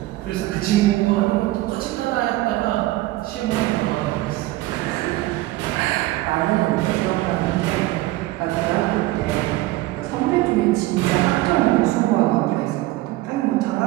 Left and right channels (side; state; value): left; quieter; 17.8 dB